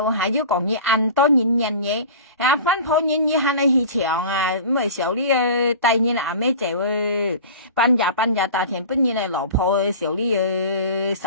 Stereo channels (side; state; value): both; inverted; correlation -0.37